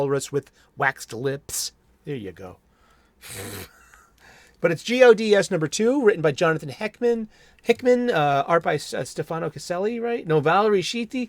with waxed lips. There you go. But it's GODS number 2, written by Jonathan Hickman, art by Stefano Caselli, right? No, Valerie Sheety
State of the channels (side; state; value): both; identical; correlation 1.00